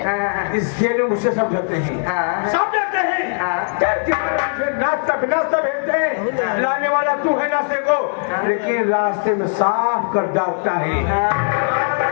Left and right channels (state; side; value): silent; right; 62 dB below the other